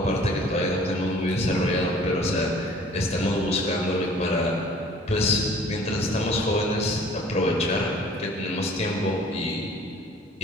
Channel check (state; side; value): normal; both; correlation 0.51